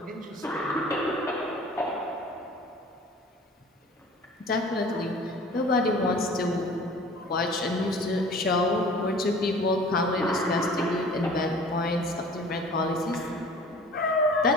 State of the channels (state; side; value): normal; both; correlation 0.46